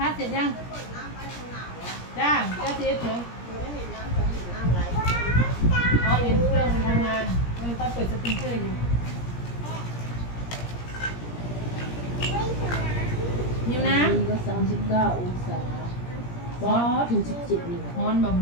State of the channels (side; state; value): right; late; 17 ms